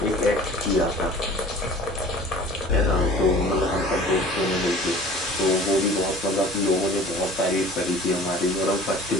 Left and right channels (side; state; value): both; normal; correlation 0.45